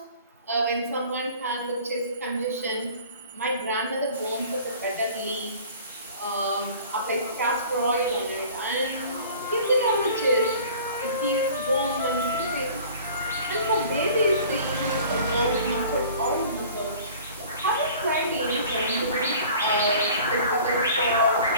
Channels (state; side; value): inverted; both; correlation -0.46